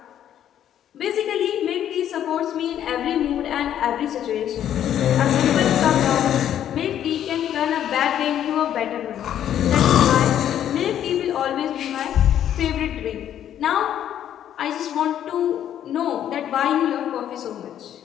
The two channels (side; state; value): right; quieter; 10.5 dB